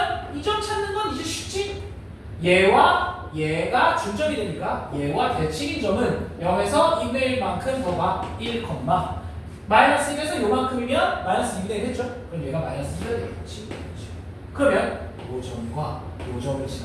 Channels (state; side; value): identical; both; correlation 1.00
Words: 이 점 찾는 건 이제 쉽지? 얘와 얘가 중점이 되니까 얘와 대칭인 점은 0에서 2분의 1만큼 더가 1, -1에서 요만큼이면 -2분의 1 했죠? 그럼 얘가 -2가 되겠지. 그러면 요 점과 요 점을